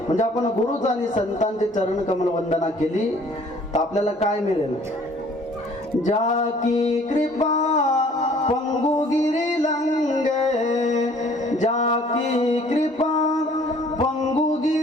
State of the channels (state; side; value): normal; both; correlation 0.56